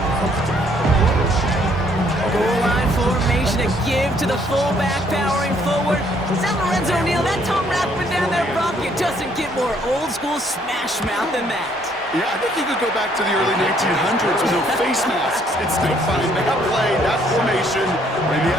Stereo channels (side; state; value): both; normal; correlation 0.66